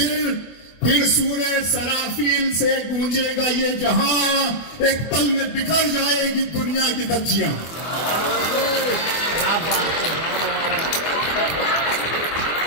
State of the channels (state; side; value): late; right; 24 ms